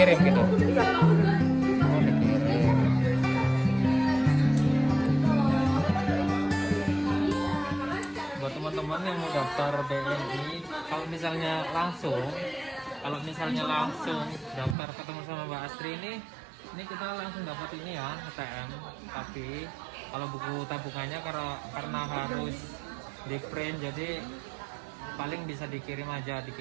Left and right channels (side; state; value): left; drops out; at 14.8 s